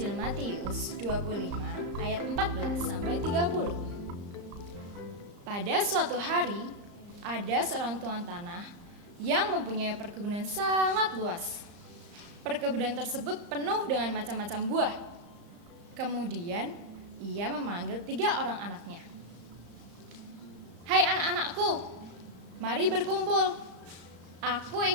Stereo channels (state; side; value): late; left; 34 ms